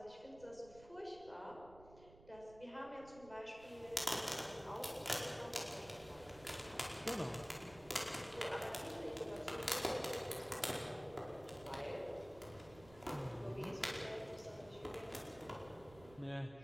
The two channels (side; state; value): right; noise; rumble, 19 dB below the sound